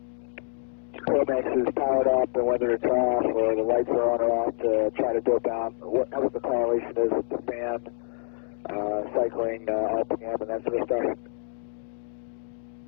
Chromex is powered up and whether it's off, or the lights are on or off, to try to dope out what the correlation is with the fan, cycling, RPM, and that sort of stuff.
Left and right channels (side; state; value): right; silent; 60 dB below the other